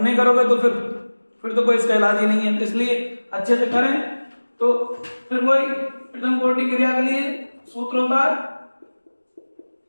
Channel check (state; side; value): inverted; both; correlation -1.00